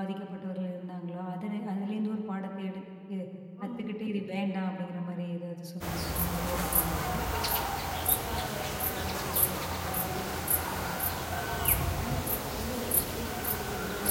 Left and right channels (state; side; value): identical; both; correlation 1.00